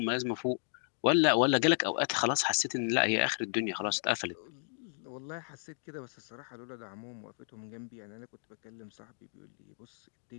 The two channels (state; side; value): silent; right; digital silence